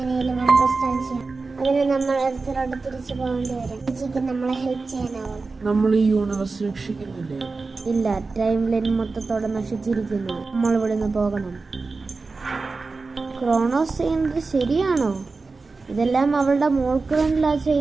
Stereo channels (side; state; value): left; quieter; 4.0 dB